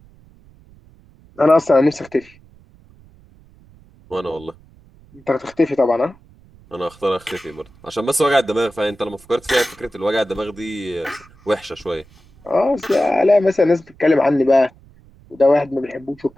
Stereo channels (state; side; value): noise; right; rumble, 27 dB below the sound